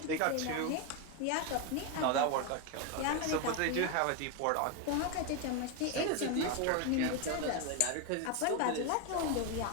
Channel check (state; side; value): different; both; correlation 0.02